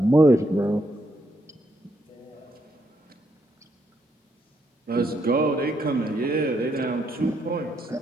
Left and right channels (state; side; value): normal; both; correlation 0.76